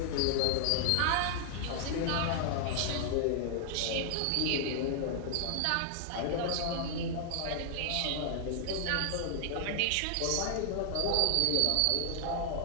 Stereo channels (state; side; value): different; both; correlation -0.01